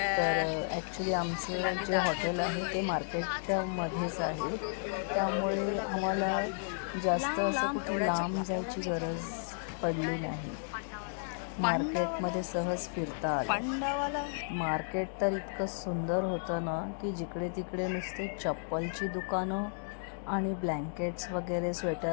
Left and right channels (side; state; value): right; silent; digital silence